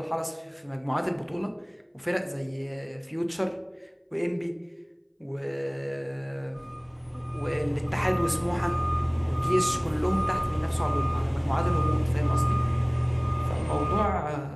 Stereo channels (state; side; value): identical; both; correlation 1.00